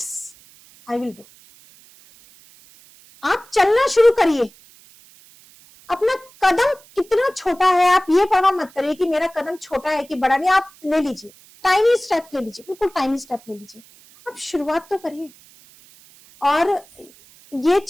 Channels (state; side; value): noise; right; hiss, 26 dB below the sound